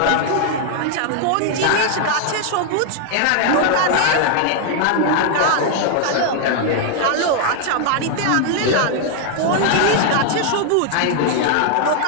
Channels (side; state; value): both; different; correlation 0.00